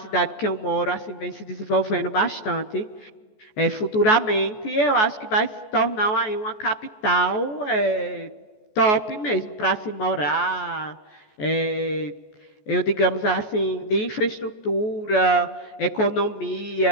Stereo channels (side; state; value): right; late; 14 ms